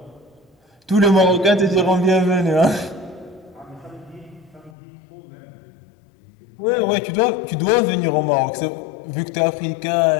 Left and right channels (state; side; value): drops out; right; at 4.7 s